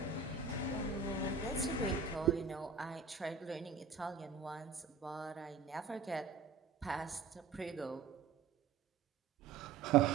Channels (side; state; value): left; quieter; 5.2 dB